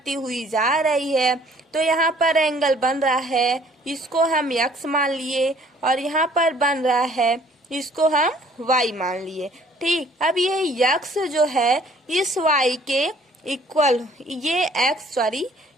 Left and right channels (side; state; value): both; normal; correlation 0.57